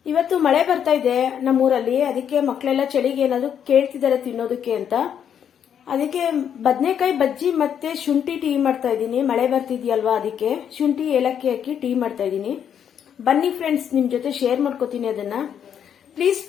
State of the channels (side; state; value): right; quieter; 8.6 dB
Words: ಇವತ್ತು ಮಳೆ ಬರ್ತಾ ಇದೆ ನಮ್ಮೂರಲ್ಲಿ. ಅದಕ್ಕೆ ಮಕ್ಕಳೆಲ್ಲ ಚಳಿಗೆ ಏನಾದ್ರು ಕೇಳ್ತಿದ್ದಾರೆ ತಿನ್ನೋದಕ್ಕೆ ಅಂತ. ಅದಕ್ಕೆ ಬದನೆಕಾಯಿ ಬಜ್ಜಿ ಮತ್ತೆ ಶುಂಠಿ ಟೀ ಮಾಡ್ತಾ ಇದ್ದೀನಿ. ಮಳೆ ಬರ್ತಿದ್ಯಲ್ವಾ, ಅದಕ್ಕೆ ಶುಂಠಿ ಏಲಕ್ಕಿ ಹಾಕಿ ಟೀ ಮಾಡ್ತಾ ಇದ್ದೀನಿ. ಬನ್ನಿ ಫ್ರೆಂಡ್ಸ್, ನಿಮ್ ಜೊತೆ ಶೇರ್ ಮಾಡ್ಕೋತೀನಿ ಅದನ್ನ. ಪ್ಲೀಸ್